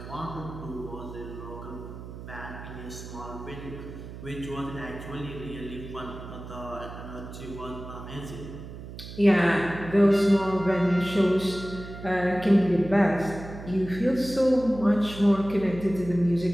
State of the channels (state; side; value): noise; right; hum, 12 dB below the sound